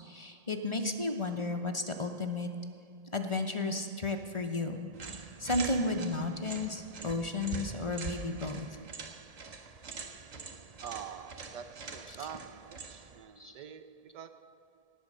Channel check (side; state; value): left; late; 1.7 ms